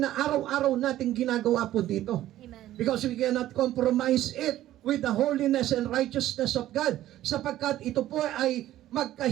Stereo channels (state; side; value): quieter; left; 13.8 dB